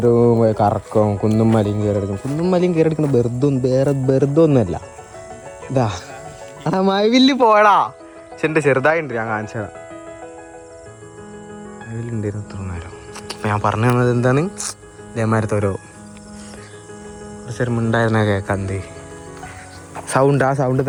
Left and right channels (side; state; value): both; identical; correlation 1.00